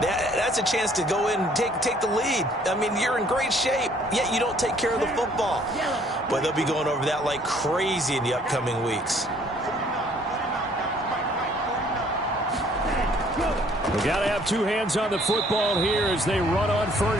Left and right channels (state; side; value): normal; both; correlation 0.60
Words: a chance to go in and take the lead. I mean, you're in great shape, yet you don't take care of the football. But they'll be going over that like crazy in the upcoming weeks. We got to have two hands on the football here as they run on